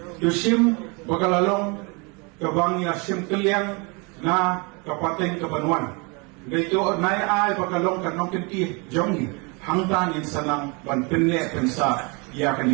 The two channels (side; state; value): left; quieter; 30.5 dB